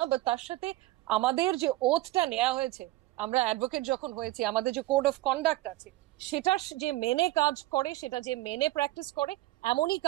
বা তার সাথে আমাদের যে ওথটা নেওয়া হয়েছে, আমরা অ্যাডভোকেট যখন হয়েছি আমাদের যে কোড অফ কন্ডাক্ট আছে সেটা যে মেনে কাজ করে, সেটা যে মেনে প্র্যাকটিস করে, এমনই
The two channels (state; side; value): quieter; left; 17.5 dB